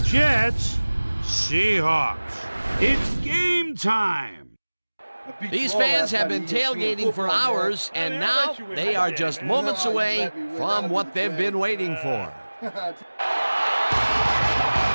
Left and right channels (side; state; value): both; inverted; correlation -1.00